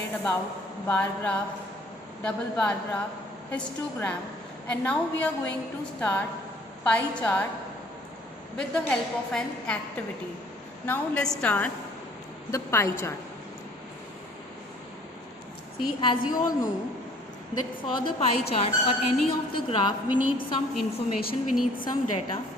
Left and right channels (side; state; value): both; normal; correlation 0.56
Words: about bar graph, double bar graph, histogram, and now we are going to start pie chart with the help of an activity. Now let's start the pie chart. See, as you all know that for the pie chart or any of the graph we need some information, we need some data.